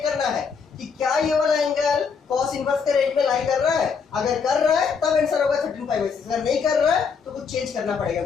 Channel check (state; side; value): quieter; right; 5.8 dB